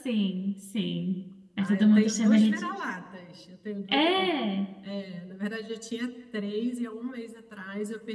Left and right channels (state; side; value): identical; both; correlation 1.00